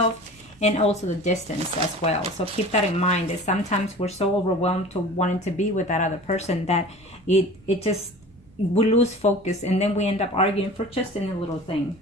and also the distance as well. So keep that in mind, that sometimes we're so overwhelmed to wanting to be with that other person that it just, we lose focus, and then we end up arguing for just any little thing.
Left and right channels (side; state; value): right; noise; rumble, 28 dB below the sound